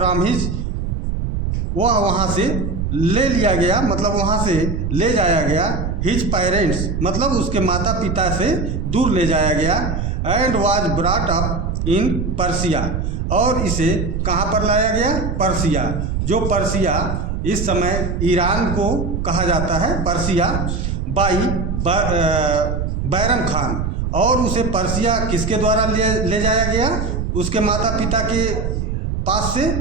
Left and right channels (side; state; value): right; noise; rumble, 2 dB below the sound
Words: his, वह वहाँ से ले लिया गया, मतलब वहाँ से ले जाया गया। his parents मतलब उसके माता पिता से दूर ले जाया गया। and was brought up in Persia, और इसे कहाँ पर लाया गया? पर्सिया, जो पर्सिया इस समय ईरान को कहा जाता है, पर्सिया। बाई बैरम खान, और उसे पर्सिया किसके द्वारा ले जाया गया? उसके माता पिता के पास से